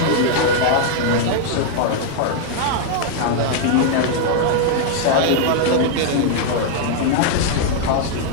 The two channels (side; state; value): both; different; correlation 0.00